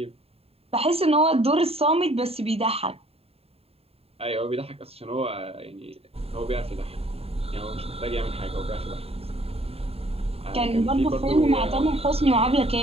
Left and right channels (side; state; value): left; late; 0.29 ms